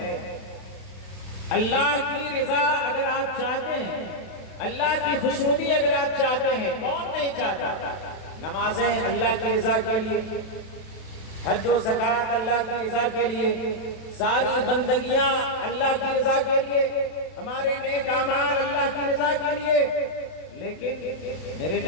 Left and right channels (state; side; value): late; right; 32 ms